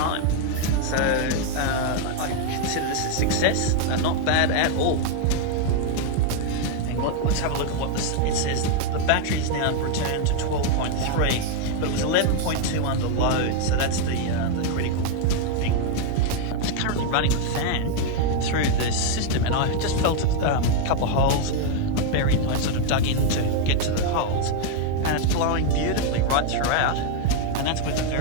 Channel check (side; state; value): both; different; correlation 0.00